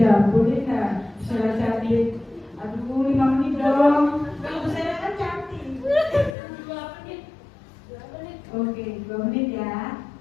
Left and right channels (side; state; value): right; drops out; at 6.4 s